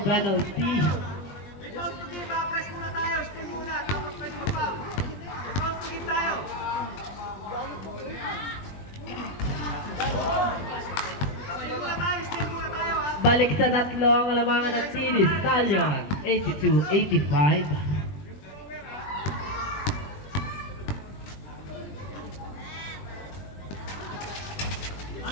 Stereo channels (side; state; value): right; late; 21 ms